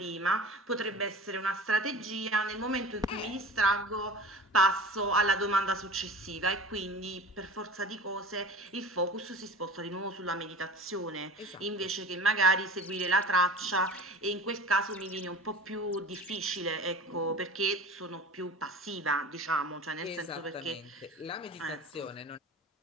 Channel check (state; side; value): normal; both; correlation 0.37